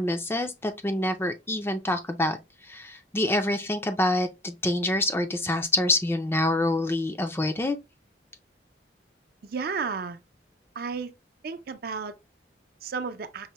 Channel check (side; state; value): both; normal; correlation 0.46